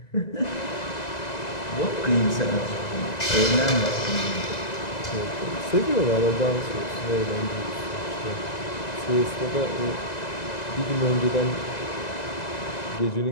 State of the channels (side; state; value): right; late; 1.9 ms